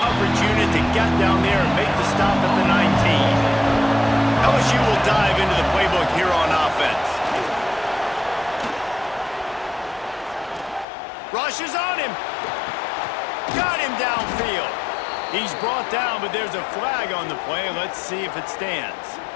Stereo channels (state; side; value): drops out; right; at 10.9 s